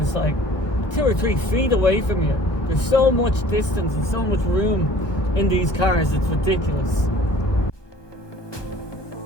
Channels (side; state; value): right; late; 1.2 ms